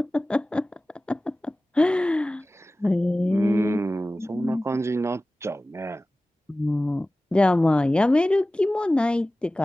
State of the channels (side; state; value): both; normal; correlation 0.97